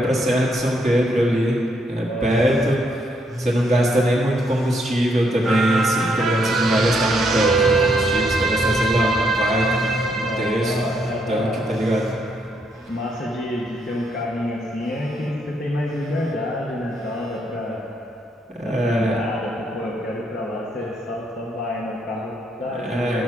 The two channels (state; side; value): normal; both; correlation 0.75